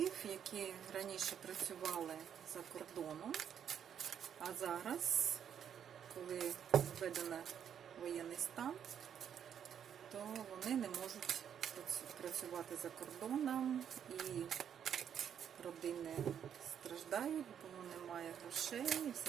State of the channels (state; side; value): quieter; left; 8.7 dB